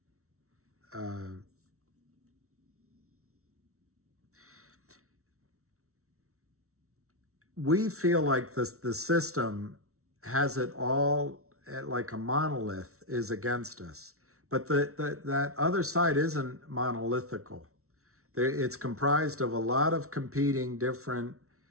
We feel like the system has it all like a monolith is against us. But that other side isn't monolithical. It's comprised of a lot of competing different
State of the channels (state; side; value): late; left; 0.63 ms